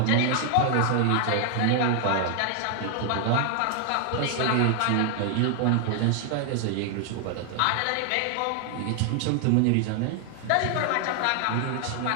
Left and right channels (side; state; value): both; different; correlation 0.00